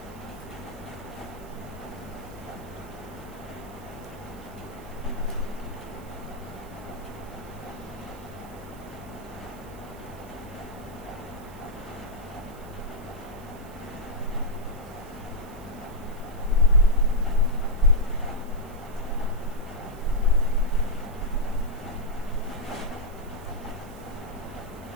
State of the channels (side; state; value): right; noise; hiss, 22 dB below the sound